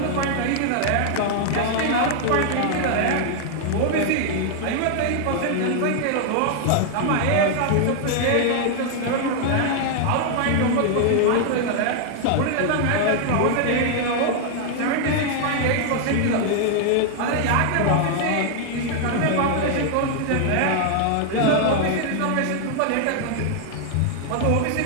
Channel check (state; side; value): different; both; correlation 0.00